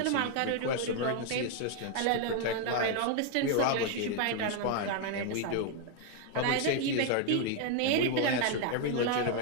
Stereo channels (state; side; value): different; both; correlation 0.00